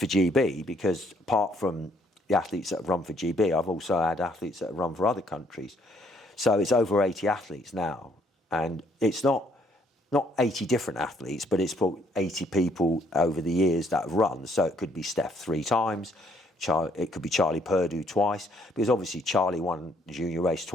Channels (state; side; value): normal; both; correlation 0.67